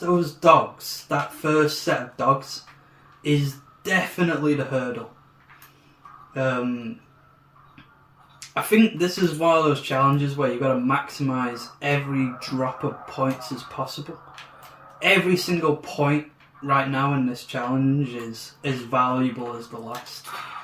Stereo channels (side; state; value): both; identical; correlation 1.00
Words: those dogs, that first set of dogs, is definitely the hurdle. I think this is one of those challenges where you've got to maximise every drop of points as possible. Every single point right now in this challenge is as valuable as the last.